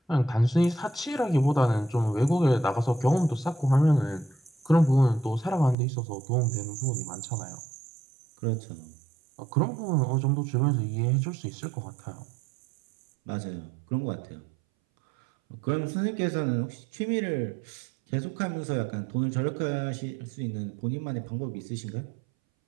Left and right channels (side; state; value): left; drops out; at 5.8 s